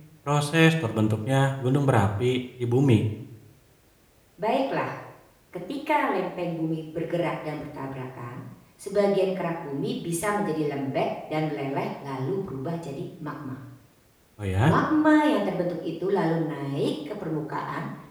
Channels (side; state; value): both; identical; correlation 1.00